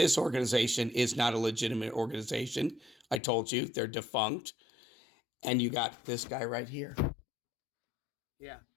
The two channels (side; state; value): right; drops out; at 3.2 s